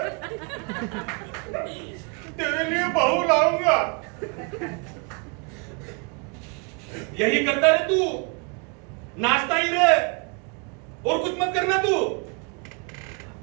तेरे लिए बहू लाऊंगा। यही करता रहे तू, नाचता ही रहे और कुछ मत करना तू।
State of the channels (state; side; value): quieter; left; 34.0 dB